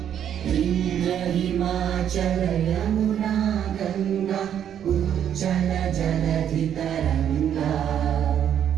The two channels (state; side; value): quieter; left; 9.5 dB